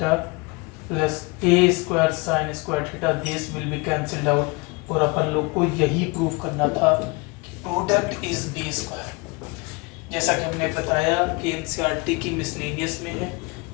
plus A square sine square theta, this will be cancelled out, और अपन लोग को यही प्रूव करना था कि product is B square. जैसा कि हमने बताया कि एनसीईआरटी की मिसलेनियस में है,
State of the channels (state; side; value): quieter; right; 27.2 dB